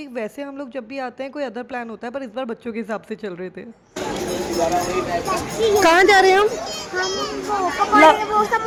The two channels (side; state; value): both; identical; correlation 1.00